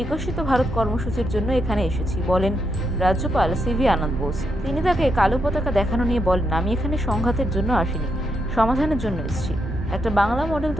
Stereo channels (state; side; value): normal; both; correlation 0.81